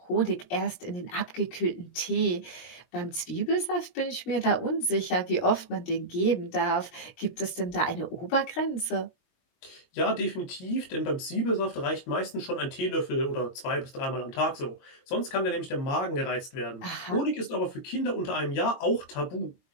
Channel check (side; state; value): right; late; 23 ms